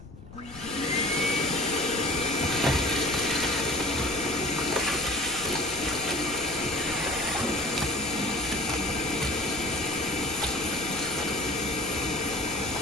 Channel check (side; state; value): left; noise; rumble, 17 dB below the sound